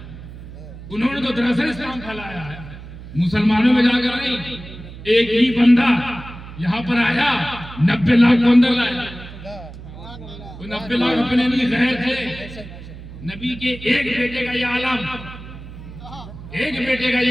उन्होंने तो दरअसल इस्लाम फैलाया है मुसलमानों में जाकर नहीं। एक ही बंदा यहाँ पर आया, 90 लाख को अंदर लाया। 90 लाख अपने लिए गए थे। नबी के एक बेटे का ये आलम, एक बेटे का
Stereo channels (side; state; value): right; noise; hum, 14 dB below the sound